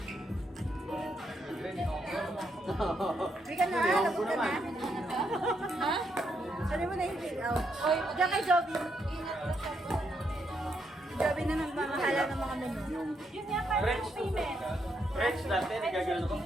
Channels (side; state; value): both; normal; correlation 0.78